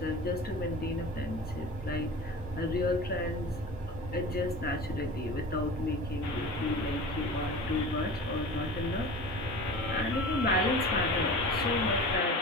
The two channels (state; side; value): normal; both; correlation 0.36